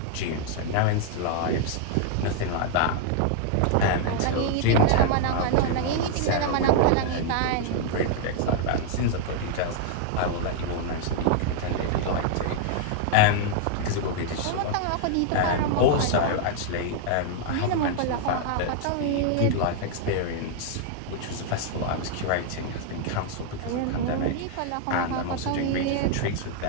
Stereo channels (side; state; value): both; different; correlation 0.00